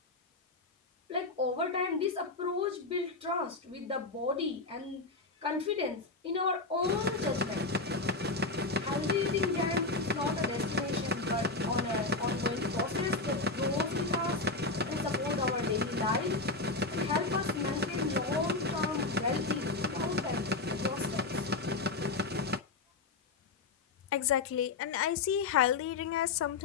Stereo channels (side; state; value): right; quieter; 3.6 dB